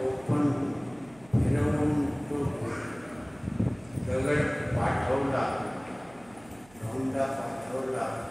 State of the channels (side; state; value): right; noise; hum, 25 dB below the sound